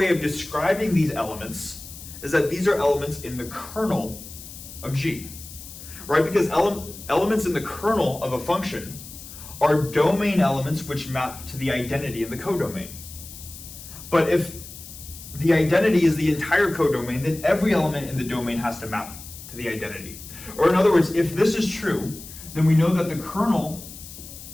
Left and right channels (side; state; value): left; noise; hiss, 15 dB below the sound